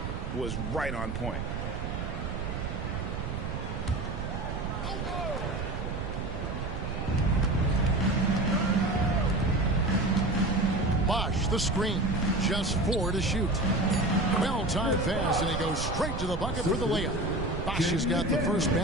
was right on point. Bosh, the screen. Just 4 to shoot. Well-timed pass, and he goes straight to the bucket for the layup. Bosh has got the first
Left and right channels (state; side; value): noise; right; rumble, 4 dB below the sound